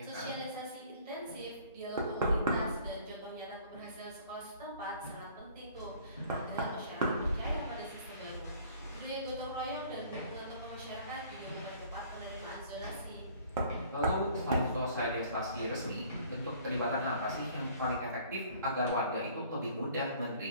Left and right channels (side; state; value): both; inverted; correlation -0.53